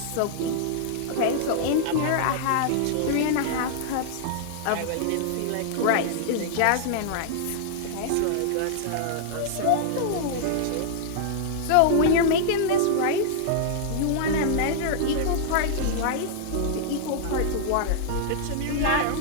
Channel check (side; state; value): both; different; correlation -0.01